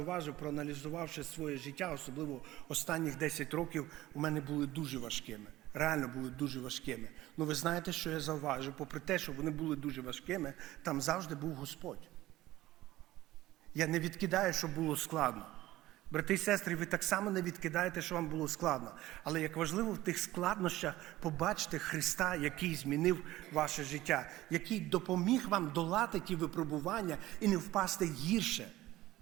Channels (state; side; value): quieter; left; 16.3 dB